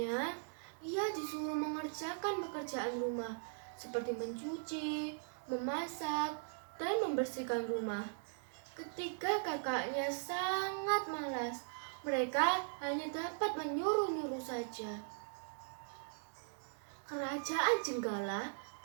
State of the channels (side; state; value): left; silent; digital silence